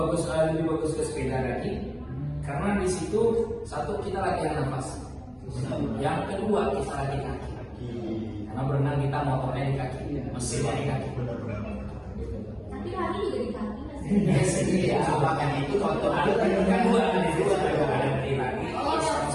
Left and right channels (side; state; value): both; identical; correlation 1.00